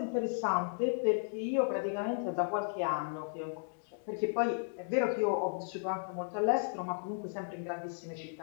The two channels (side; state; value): right; silent; digital silence